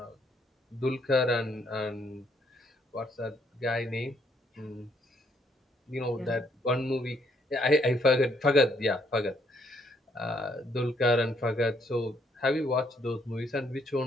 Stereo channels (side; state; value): both; normal; correlation 0.70